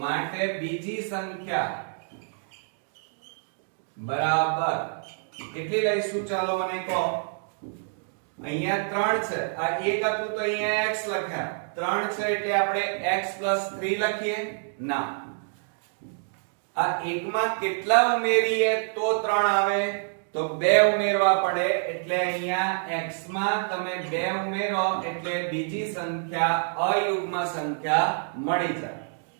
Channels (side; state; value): left; silent; digital silence